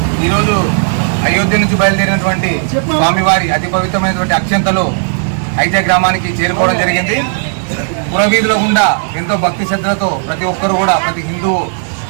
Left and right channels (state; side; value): silent; left; digital silence